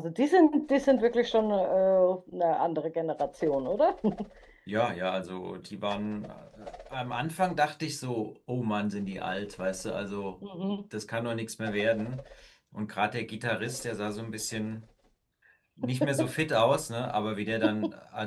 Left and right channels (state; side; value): identical; both; correlation 1.00